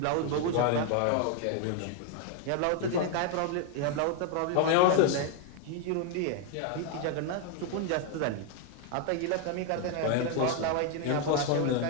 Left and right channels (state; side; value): different; both; correlation 0.01